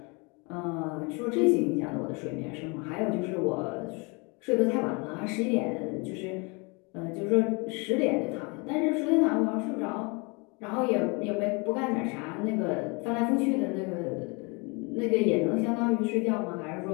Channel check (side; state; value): right; quieter; 30.2 dB